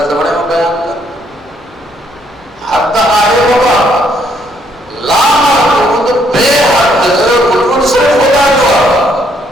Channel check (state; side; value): normal; both; correlation 0.70